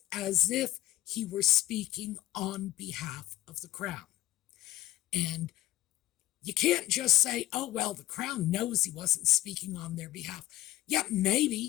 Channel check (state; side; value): quieter; right; 15.6 dB